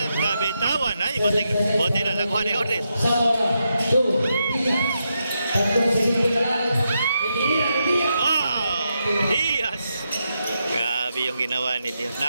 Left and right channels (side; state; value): both; inverted; correlation -0.84